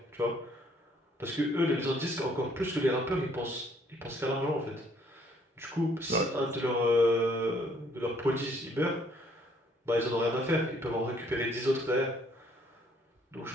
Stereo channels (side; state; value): both; normal; correlation 0.64